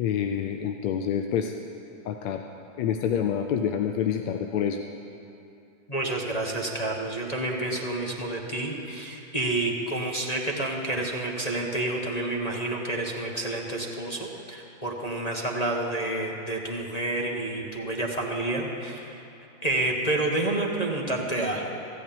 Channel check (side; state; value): right; late; 1.9 ms